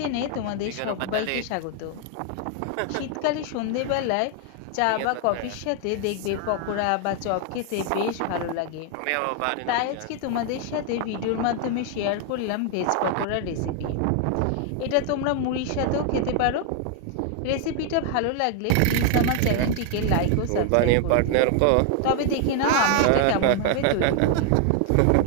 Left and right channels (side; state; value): both; different; correlation 0.00